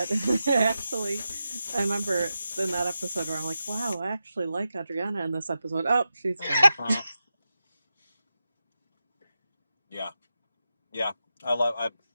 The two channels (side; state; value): both; inverted; correlation -0.90